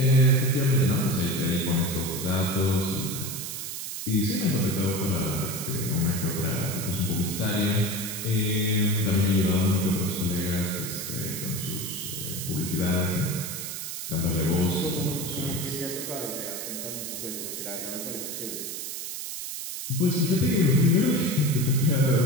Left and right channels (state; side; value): noise; right; hiss, 6 dB below the sound